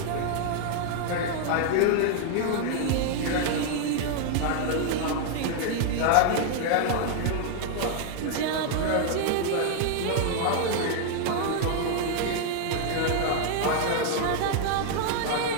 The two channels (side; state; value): both; different; correlation 0.00